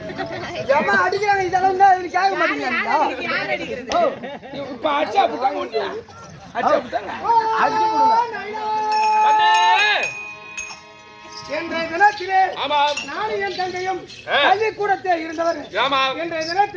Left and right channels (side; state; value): both; identical; correlation 1.00